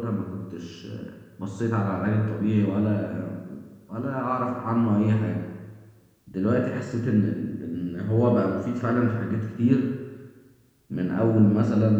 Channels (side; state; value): both; identical; correlation 1.00